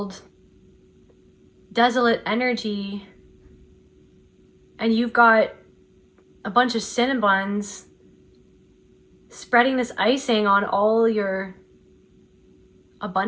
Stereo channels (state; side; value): identical; both; correlation 1.00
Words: desolate energy. And you've got a bunch of cinnabuns spreading this icing on all your